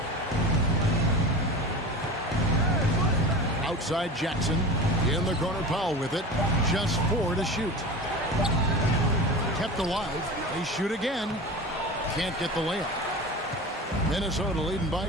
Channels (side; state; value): both; normal; correlation 0.32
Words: Outside Jackson. In the corner, Powell with it. Just 4 to shoot. Kept alive. They shoot again. Can't get the layup. Minnesota leading by